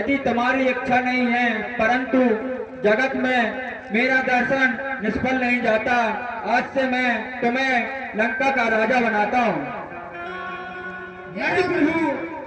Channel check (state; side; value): identical; both; correlation 1.00